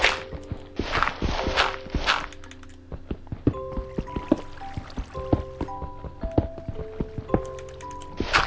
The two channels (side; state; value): both; identical; correlation 1.00